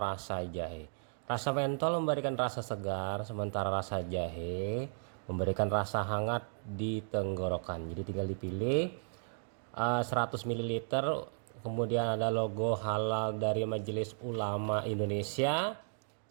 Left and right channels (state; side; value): silent; left; digital silence